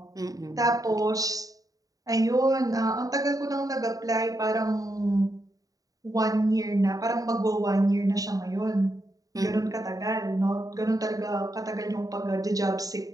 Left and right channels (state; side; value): late; left; 0.17 ms